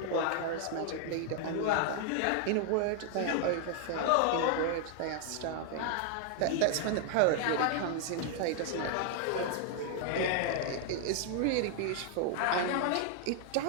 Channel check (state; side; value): different; both; correlation 0.00